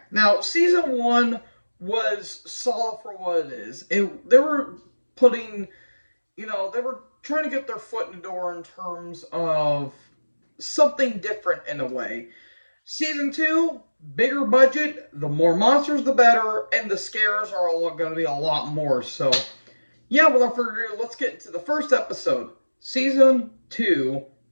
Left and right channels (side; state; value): both; inverted; correlation -1.00